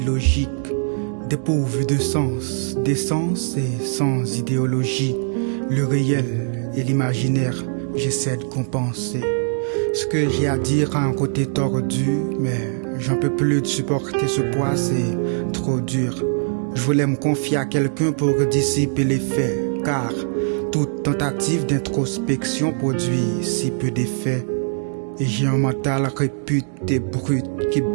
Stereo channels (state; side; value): silent; left; digital silence